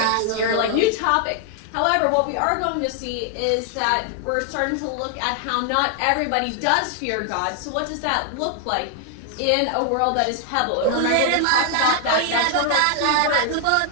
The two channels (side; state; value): both; different; correlation 0.00